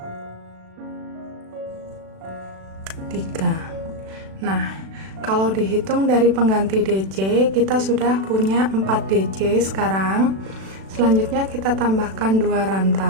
3. Nah, kalau dihitung dari pengganti DC, kita sudah punya 4 DC sekarang. Selanjutnya kita tambahkan 2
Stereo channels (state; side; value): late; left; 36 ms